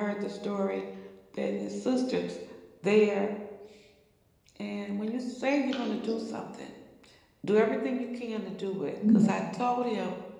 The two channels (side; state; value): both; identical; correlation 1.00